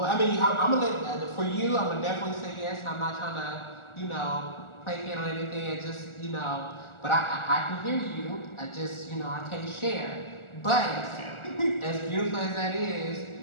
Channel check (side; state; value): right; late; 1.4 ms